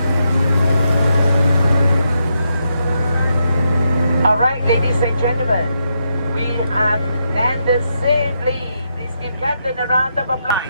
All right, ladies and gentlemen, we have landed safely. Please give Captain a round of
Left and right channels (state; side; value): inverted; both; correlation -0.81